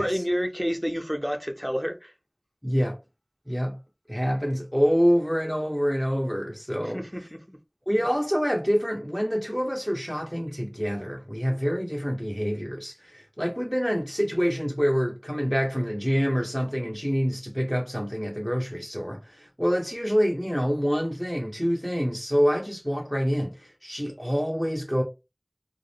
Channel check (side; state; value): both; identical; correlation 1.00